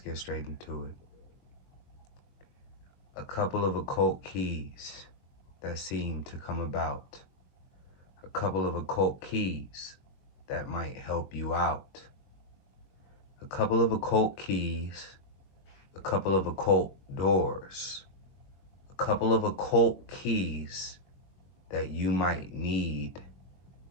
straight into it. A couple of occult keys that seem to come about. A couple of occult keys that might help you out. A couple of occult keys, a couple of occult doors. A couple of occult keys that you might need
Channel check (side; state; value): right; late; 21 ms